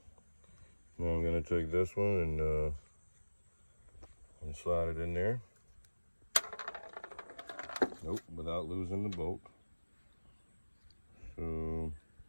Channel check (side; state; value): both; inverted; correlation -1.00